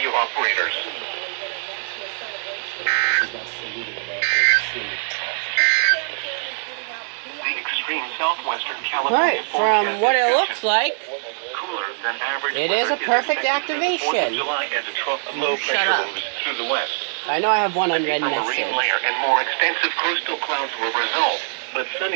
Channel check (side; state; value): left; silent; digital silence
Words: operators. The extreme southwestern California from what it looks like, than average it is a perfect activation. July as a trough of low pressure moves through the west. I know I have one unread A message. marine layer and more extensive coastal clouds will result, but